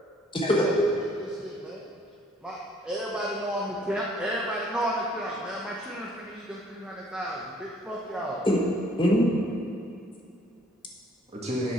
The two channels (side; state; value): both; normal; correlation 0.60